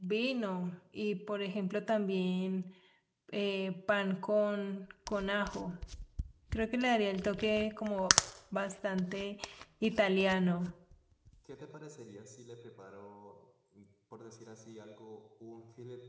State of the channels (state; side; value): identical; both; correlation 1.00